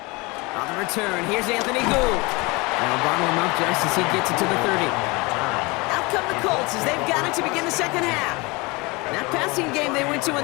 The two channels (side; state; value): right; quieter; 25.4 dB